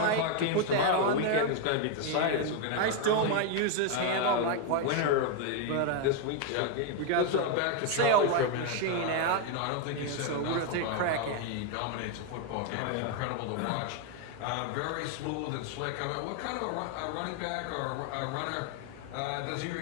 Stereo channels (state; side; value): different; both; correlation 0.01